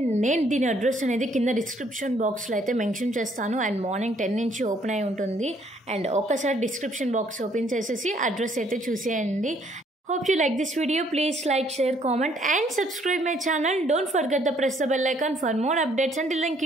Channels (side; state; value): both; normal; correlation 0.65